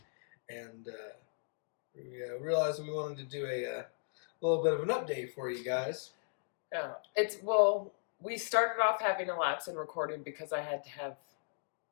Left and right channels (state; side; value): silent; right; digital silence